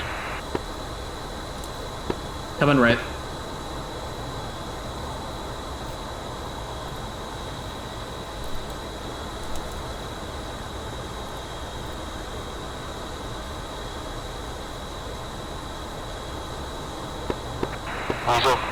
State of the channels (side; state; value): both; identical; correlation 1.00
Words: Coming right. Weasel